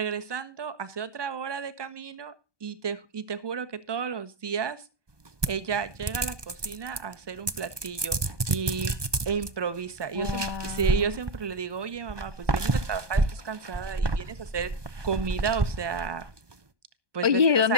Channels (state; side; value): late; left; 1.2 ms